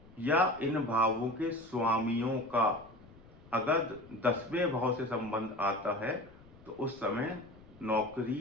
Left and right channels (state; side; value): noise; left; rumble, 23 dB below the sound